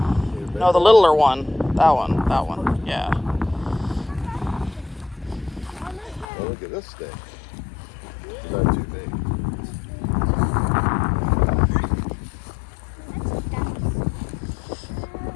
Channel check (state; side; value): drops out; right; at 6.2 s